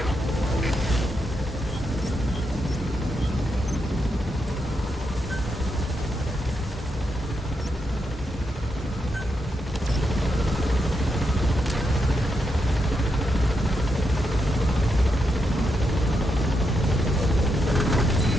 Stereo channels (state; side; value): normal; both; correlation 0.83